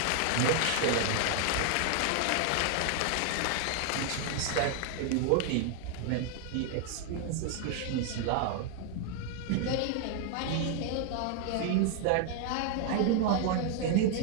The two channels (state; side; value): different; both; correlation 0.00